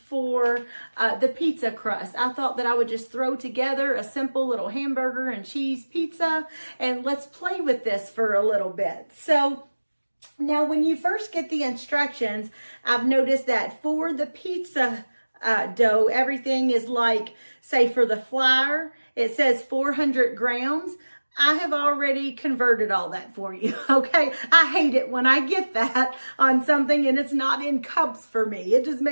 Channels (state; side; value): inverted; both; correlation -1.00